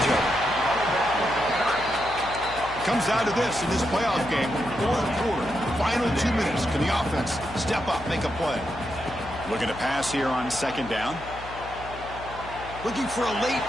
of it. Comes down to this in this playoff game. Fourth quarter, final 2 minutes. Can the offense step up, make a play? Looking to pass here on second down. Looking for a late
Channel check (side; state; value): left; noise; hum, 15 dB below the sound